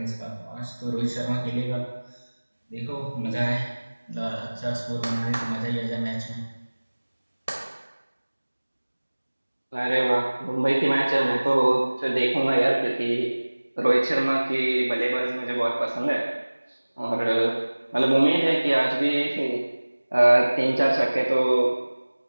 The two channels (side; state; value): both; inverted; correlation -1.00